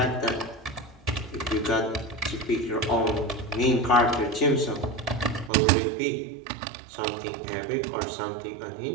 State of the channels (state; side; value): drops out; left; at 5.5 s